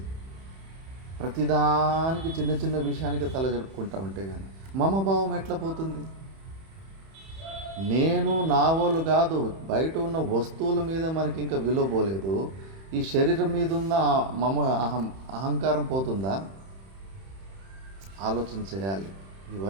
ప్రతిదానికి చిన్న చిన్న విషయానికి తల జరుపుకుంటా ఉంటే కానీ మమభావం ఎట్లా పోతుంది? నేను నా వాళ్ళు కాదు, బయట ఉన్న వస్తువుల మీద మనకి ఇంకా విలువ పోలేదు, ఈ శరీరం మీద ఉన్న అహంకారం పోతుందా? ఆలోచన చేయాలి.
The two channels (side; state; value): left; late; 31 ms